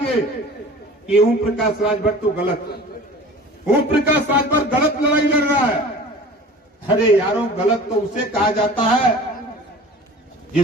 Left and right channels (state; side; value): normal; both; correlation 0.42